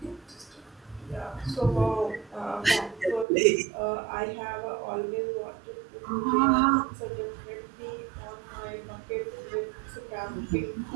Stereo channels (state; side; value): drops out; left; at 3.2 s